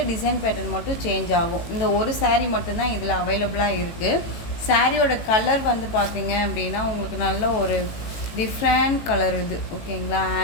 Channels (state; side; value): late; right; 18 ms